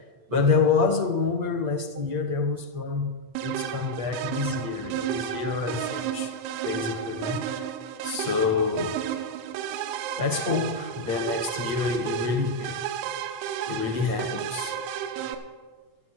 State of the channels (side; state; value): left; late; 8.5 ms